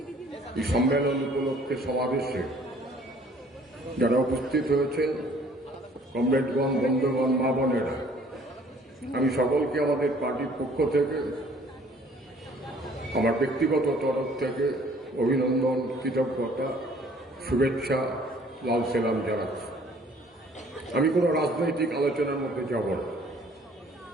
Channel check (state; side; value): normal; both; correlation 0.56